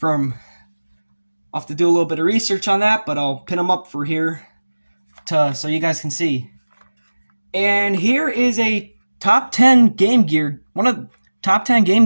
I'll have to do a little bit of research on that, but I'll pin them up for here so you guys can see. And here is a top 10 Game Gear, one of the top 10 Game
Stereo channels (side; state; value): both; inverted; correlation -1.00